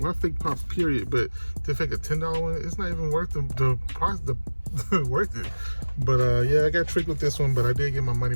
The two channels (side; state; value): both; inverted; correlation -1.00